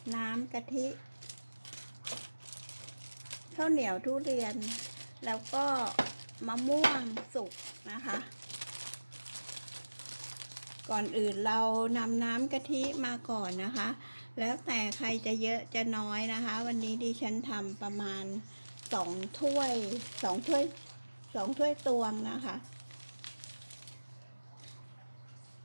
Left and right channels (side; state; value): both; inverted; correlation -1.00